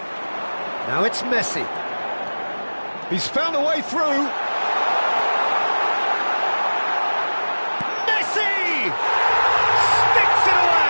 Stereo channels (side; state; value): both; inverted; correlation -1.00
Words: Now it's Messi. He's found a way through. Messi! Sticks it